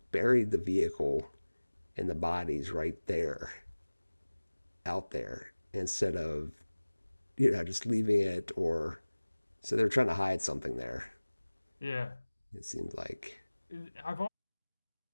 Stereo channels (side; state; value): both; inverted; correlation -1.00